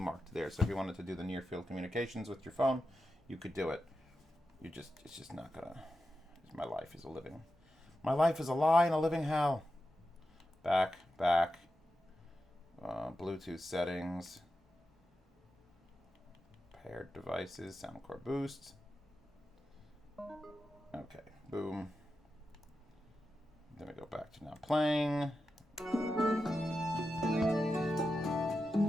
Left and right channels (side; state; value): both; normal; correlation 0.90